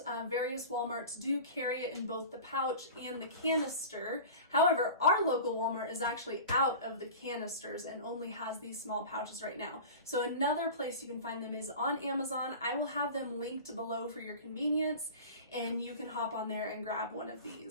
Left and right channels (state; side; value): inverted; both; correlation -0.35